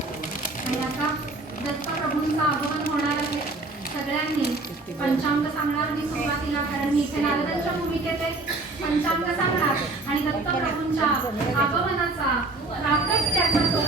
दत्तप्रभूंचं आगमन होणार आहे. सगळ्यांनी पंचांग सांगणार मी सुरुवातीला, कारण मी इथे नारदांच्या भूमिकेत पंचांग सांगणार आणि दत्तप्रभूंच्या आगमनाचा प्राकट्याचा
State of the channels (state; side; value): quieter; left; 3.1 dB